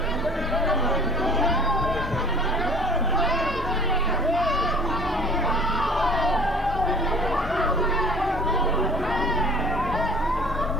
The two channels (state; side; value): normal; both; correlation 0.47